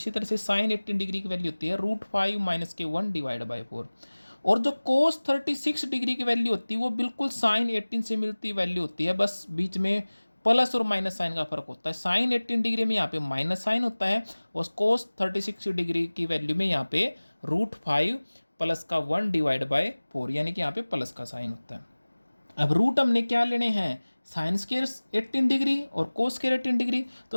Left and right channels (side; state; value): both; inverted; correlation -1.00